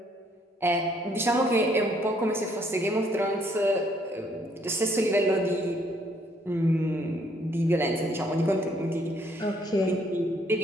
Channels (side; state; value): both; normal; correlation 0.67